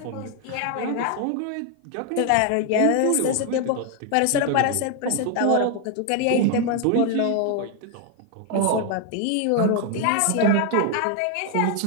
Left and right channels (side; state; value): both; different; correlation 0.01